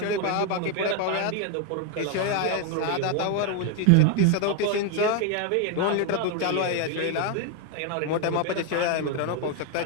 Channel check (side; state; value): both; different; correlation 0.01